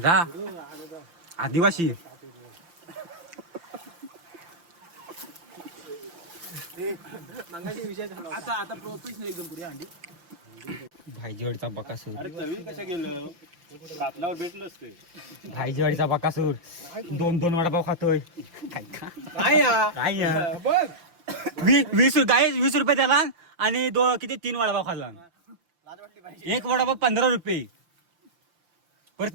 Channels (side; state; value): left; late; 5.8 ms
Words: रा आदिवासी मंगाशी विषय झाला. आता प्रोफेशनल एकदम पुढे अंडी. भाईजीवाडीचा बकासूर. अरे तरी कशा गेलं कातल्यावर भेटलंच ते. भाईजीवाडीचा बकासूर 2 वडापाव खातोय. काय या काय बघ 20 रुपये त्याला आणि किती 3 वडापाव खाल्ला. एक वडापाव 15 रुपये. परत